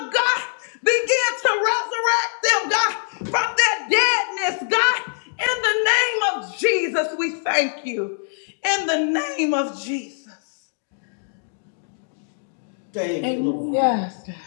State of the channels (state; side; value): silent; right; digital silence